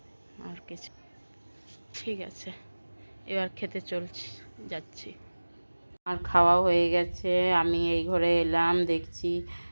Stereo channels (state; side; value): inverted; both; correlation -1.00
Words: আর কিছু। ঠিক আছে, এবার খেতে যাচ্ছি। আর খাওয়া হয়ে গেছে, আমি এই ঘরে এলাম, দেখছি